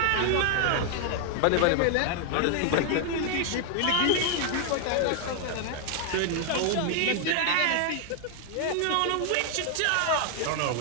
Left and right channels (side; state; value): both; different; correlation 0.00